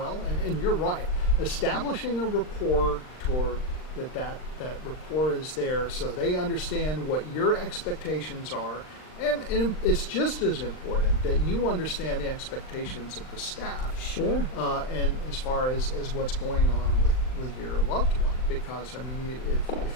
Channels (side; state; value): right; late; 39 ms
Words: And you're right, establishing a rapport toward that rapport is there, so they understand what your expectations are. And it's just as important that you understand the expectations of the staff. Sure. And as far as what's going on with your loved one, because